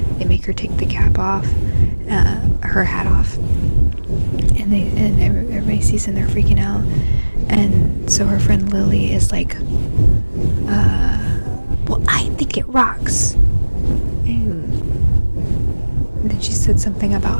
they make her take the cap off, her hat off, and everybody sees and they're freaking out, and so her friend Lily is like, well, I think it rocks, and then she said something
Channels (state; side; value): inverted; both; correlation -1.00